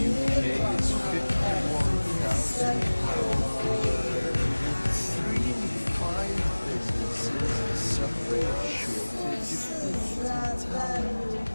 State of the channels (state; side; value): inverted; both; correlation -1.00